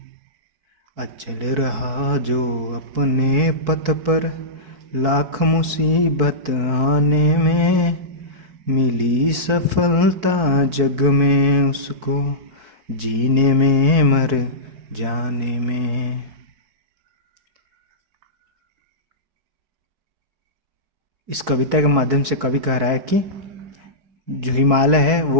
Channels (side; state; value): left; late; 4.6 ms